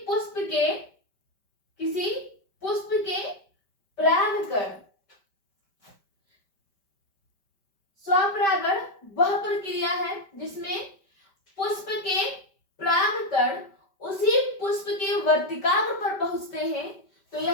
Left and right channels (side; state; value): right; late; 5.1 ms